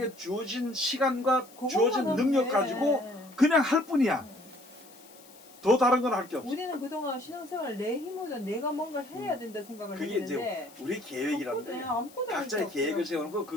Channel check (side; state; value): left; noise; hiss, 23 dB below the sound